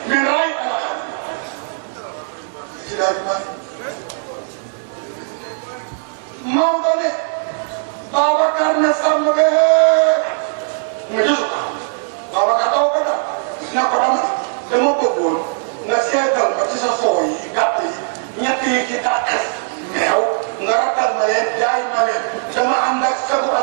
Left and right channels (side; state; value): left; silent; 67 dB below the other